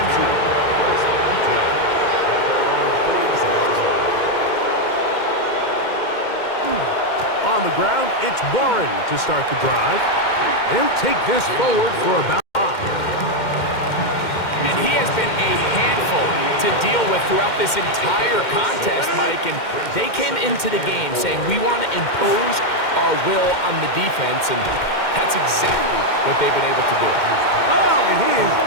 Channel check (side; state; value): right; late; 2.1 ms